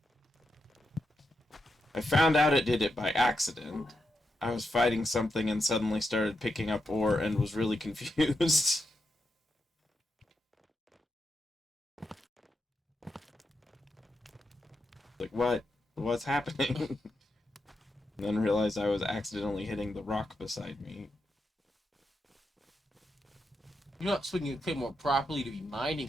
I found out it did it by accident. I was fighting something and suddenly started picking up ore and was really confused. Like, what? What's happening? And then realized I was accidentally hitting the rock beside me. You're not swinging the Claymore properly to be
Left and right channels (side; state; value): both; normal; correlation 0.85